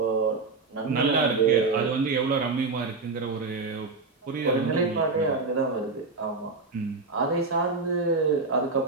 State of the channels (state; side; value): quieter; left; 3.9 dB